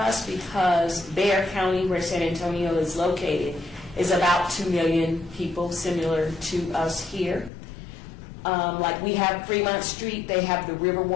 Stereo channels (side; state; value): right; drops out; at 7.5 s